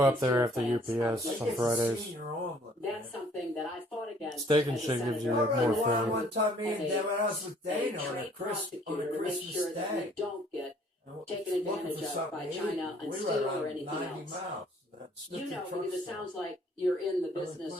up American there steel after plants UPS are on like Fridays. Senior omelet. That's something that I fought against. Steak and as a shake gives you, senator. like, I more rode around food. one time, me and As a- Dad went out with a Dana on a trade Christmas make sure that we Day. don't get And taken looking advantage for of something by to eat. China on We steel rode or around anything 90 else. miles. That's You know, truck because it stop. sounds like you're in the Other business or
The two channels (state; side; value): normal; both; correlation 0.59